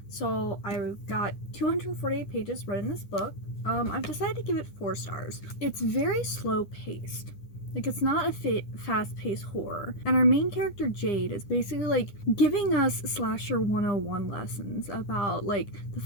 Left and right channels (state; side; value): late; right; 9.9 ms